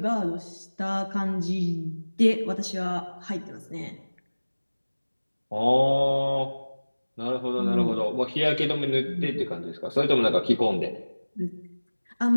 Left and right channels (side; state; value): both; inverted; correlation -1.00